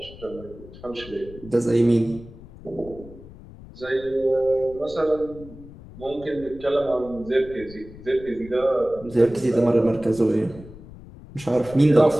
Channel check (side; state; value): left; noise; rumble, 18 dB below the sound